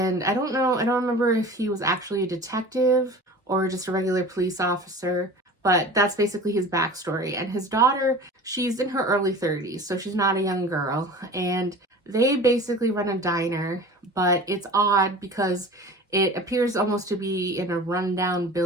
I don't remember if he was actually a detective or just a regular police officer, but that's basically his backstory. And his daughter, she's in her early 30s, so she's not a young girl, and they basically run a diner, but it's odd because it appears almost to be in a rundown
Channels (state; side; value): normal; both; correlation 0.38